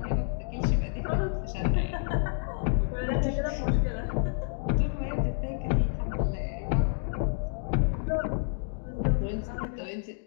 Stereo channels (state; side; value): silent; right; digital silence